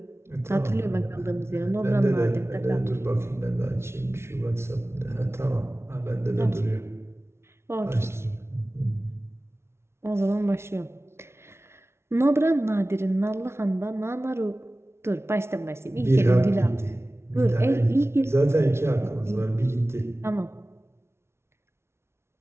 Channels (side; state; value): left; late; 0.12 ms